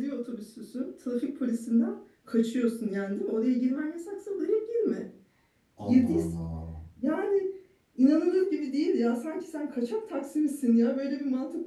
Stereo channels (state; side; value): identical; both; correlation 1.00